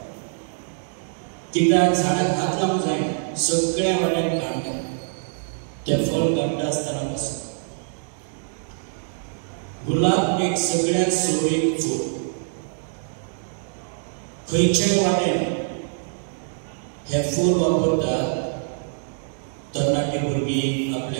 कित्याक झाडाक हात लावंक जायना. सगळ्या वाड्यान कांटे. ते फळ काडटा आसतना पासून गुलाब एक सगळ्यात सोबीत फूल. खंयच्याय वाटेन हे फूल वापरतात. तरणाटी भुरगीं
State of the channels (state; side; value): silent; left; digital silence